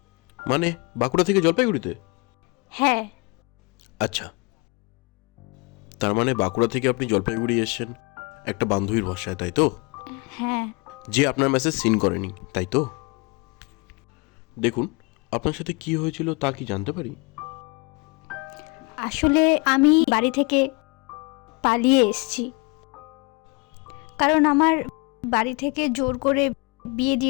মানে বাঁকুড়া থেকে জলপাইগুড়িতে? হ্যাঁ। আচ্ছা, তার মানে বাঁকুড়া থেকে আপনি জলপাইগুড়ি এসেছেন একটা বান্ধবীর ভরসায়, তাই তো? হ্যাঁ। যে আপনার মেসেজ সিন করেনি, তাই তো? দেখুন, আপনার সাথে কি হয়েছিল তা কি জানতে পারি? আসলে আমি বাড়ি থেকে পালিয়ে এসেছি, কারণ আমার বাড়ি থেকে জোর করে বিয়ে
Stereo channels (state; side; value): quieter; right; 29.0 dB